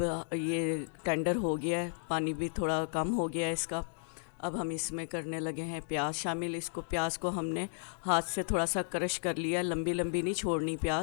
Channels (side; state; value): right; silent; digital silence